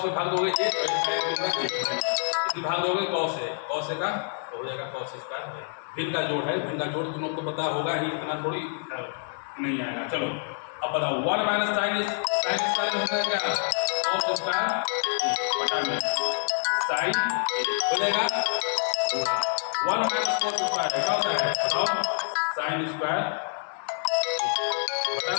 में भाग दोगे 1 इसी भाग दोगे कॉस है का तो हो जाएगा कॉस स्क्वायर। भिन्न का जोड़ है, भिन्न का जोड़ तुम लोग को पता होगा ही, इतना थोड़ी नहीं आएगा। चलो अब बताओ 1 माइनस साइन स्क्वायर हो जाएगा कॉस स्क्वायर बटा में साइन हो जाएगा 1 माइनस कॉस स्क्वायर क्या होता है? बताओ साइन स्क्वायर बटा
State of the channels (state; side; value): silent; right; 60 dB below the other